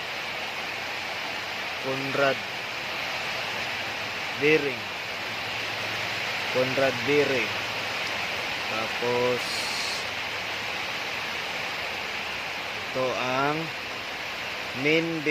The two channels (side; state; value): both; identical; correlation 1.00